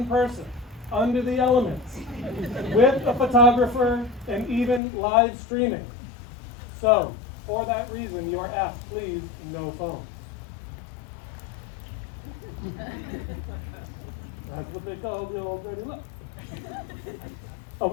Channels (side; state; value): right; drops out; at 4.8 s